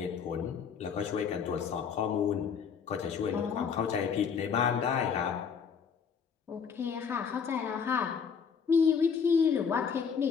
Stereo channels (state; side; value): quieter; right; 6.5 dB